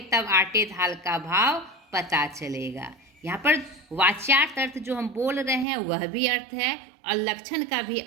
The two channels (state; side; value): drops out; left; at 5.7 s